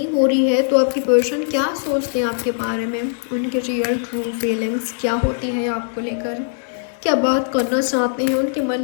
हो रही है तो आपकी पर्सन क्या सोचते हैं आपके बारे में, उनके रियल ट्रू फीलिंग्स क्या होती है आपको लेकर, क्या बात करना चाहते हैं उनके मन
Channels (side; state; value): right; silent; 59 dB below the other